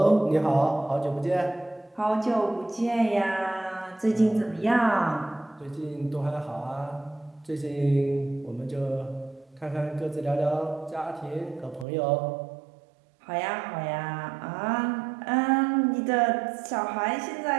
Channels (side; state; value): left; drops out; at 11.9 s